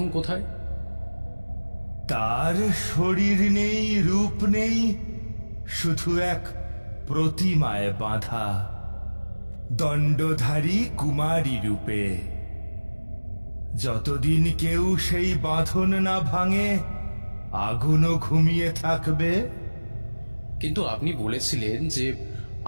কোথায়? তার শরীর নেই, রূপ নেই, শুধু এক প্রতিমায় বাঁধা, দণ্ডধারী কুমারী রূপে। যতদিন কেউ সেই বাঁধন না ভাঙে, আগুনও ঘুমিয়ে থাকবে। কিন্তু আপনি বলেছিলেন যে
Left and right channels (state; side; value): inverted; both; correlation -1.00